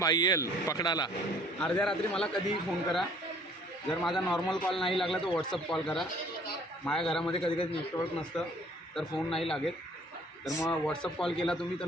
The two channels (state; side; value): normal; both; correlation 0.56